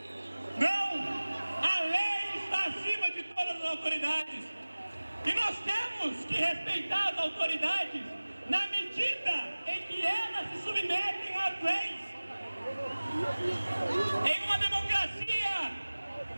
Não! A lei está acima de todas as autoridades. E nós temos que respeitar as autoridades na medida em que elas se submetem às leis. Em uma democracia,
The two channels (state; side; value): inverted; both; correlation -1.00